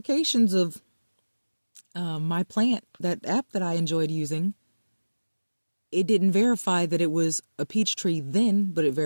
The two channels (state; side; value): inverted; both; correlation -1.00